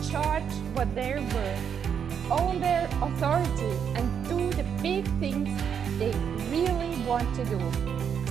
charge what they're worth, own their authority, and do the big things they really want to do.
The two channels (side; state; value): left; quieter; 7.7 dB